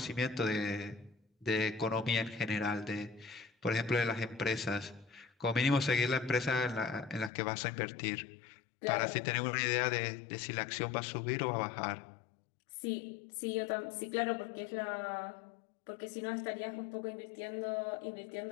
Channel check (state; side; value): drops out; right; at 7.3 s